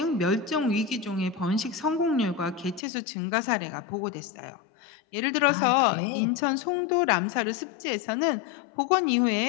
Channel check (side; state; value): right; drops out; at 2.8 s